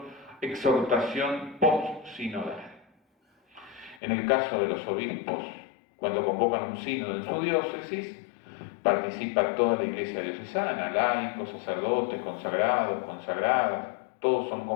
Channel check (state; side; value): drops out; right; at 4.0 s